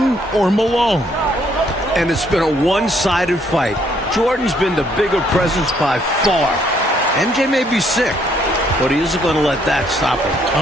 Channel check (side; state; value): both; normal; correlation 0.68